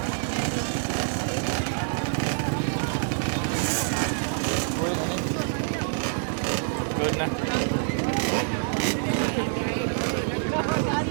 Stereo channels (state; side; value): silent; left; digital silence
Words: Uy, naning. Good na.